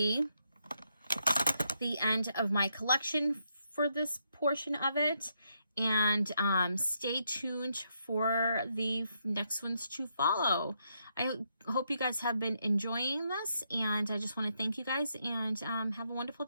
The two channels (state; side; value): inverted; both; correlation -0.78